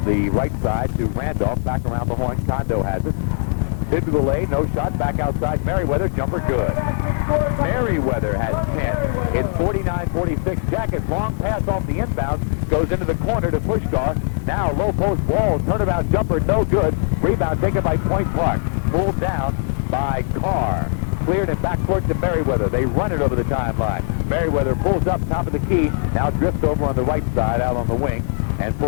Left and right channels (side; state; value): right; silent; 65 dB below the other